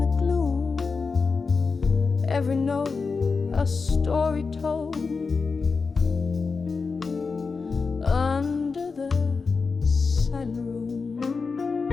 the gloom. Every note a story told under the silent room.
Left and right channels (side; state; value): right; quieter; 4.7 dB